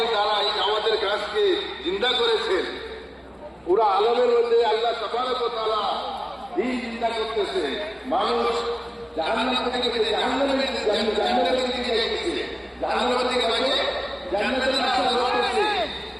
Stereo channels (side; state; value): both; identical; correlation 1.00